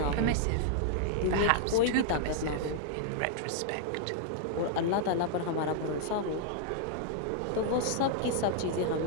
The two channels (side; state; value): both; different; correlation -0.01